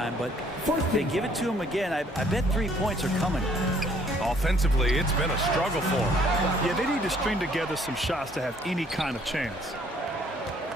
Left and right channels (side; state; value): both; normal; correlation 0.62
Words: but if they give it to him again, I bet 3 points are coming. Offensively, it's been a struggle for him. Yeah, they need to string together some shots to have any kind of chance.